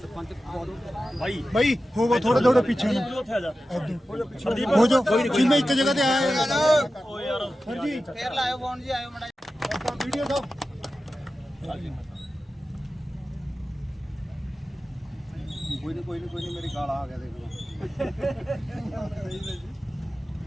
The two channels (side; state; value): both; normal; correlation 0.93